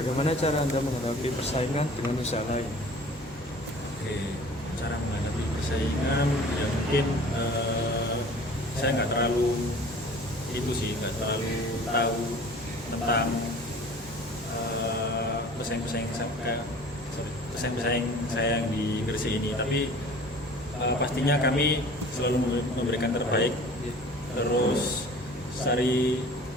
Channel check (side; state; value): both; normal; correlation 0.45